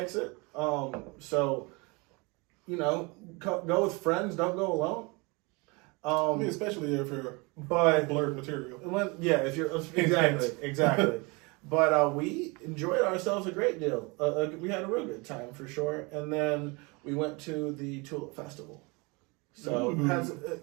So, go with friends. Don't go alone. I mean, especially if you're But blurred material. if you're exactly. But we enjoyed ourselves a great deal. We had a real good time for sure. And then we went to the Tulip Festival. So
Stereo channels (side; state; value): left; quieter; 27.9 dB